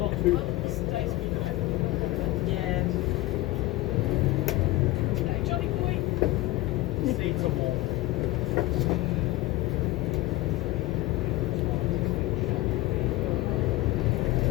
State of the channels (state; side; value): quieter; right; 18.7 dB